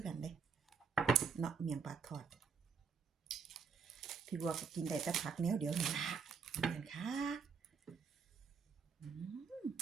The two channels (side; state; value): left; quieter; 5.7 dB